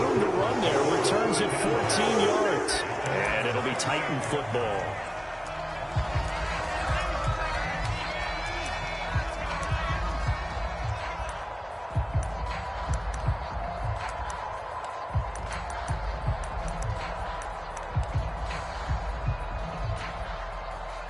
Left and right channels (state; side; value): identical; both; correlation 1.00